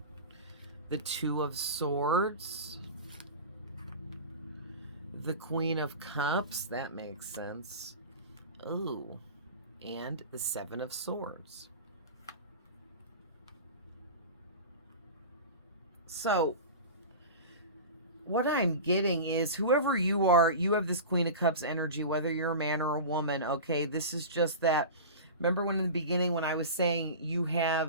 the Two of Swords, the Queen of Cups. That makes sense. Ooh, and the Seven of Swords. So what I'm getting is, whoever you are, you have this Queen of Cups energy, whether you're a man or a woman. Okay, this is just that. Remember when in the beginning when I was saying you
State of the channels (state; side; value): inverted; both; correlation -0.31